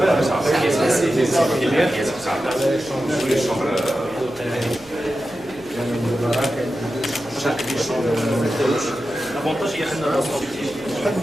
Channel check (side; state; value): left; noise; hum, 25 dB below the sound